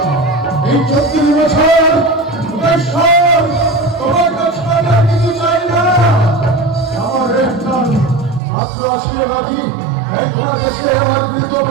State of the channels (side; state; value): left; drops out; at 8.4 s